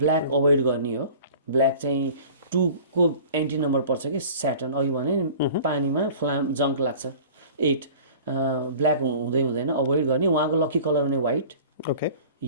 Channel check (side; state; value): both; inverted; correlation -0.44